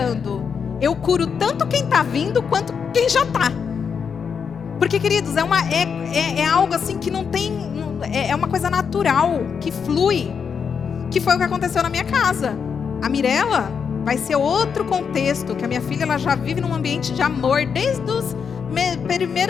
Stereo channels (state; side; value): quieter; right; 6.5 dB